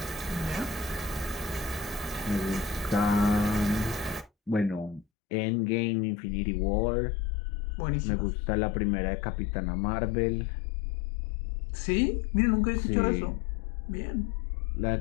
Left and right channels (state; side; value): drops out; right; at 5.1 s